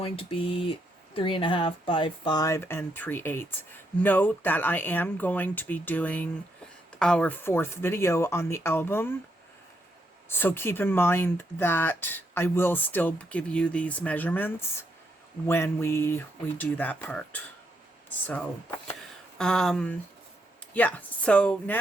to be 3.5 by 5 3/8. Note that I am going to be doing our 4th video on the album, so keep in mind that I will still give you these measurements when we do that part. So yeah, so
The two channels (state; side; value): normal; both; correlation 0.78